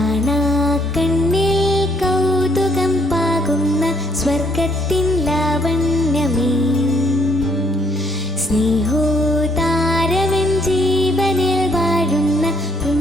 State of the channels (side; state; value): both; normal; correlation 0.68